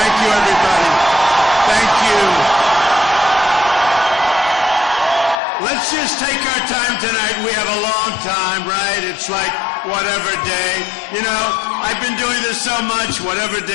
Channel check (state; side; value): drops out; right; at 5.4 s